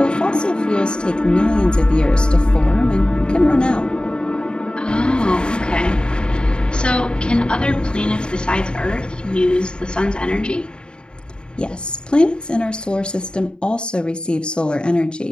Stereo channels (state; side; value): late; right; 0.050 ms